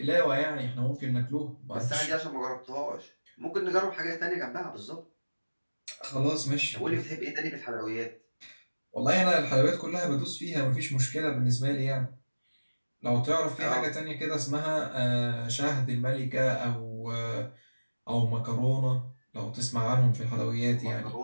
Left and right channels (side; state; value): both; inverted; correlation -1.00